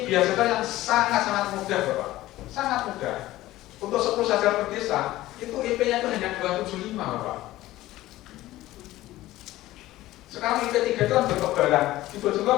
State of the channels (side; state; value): right; quieter; 16.2 dB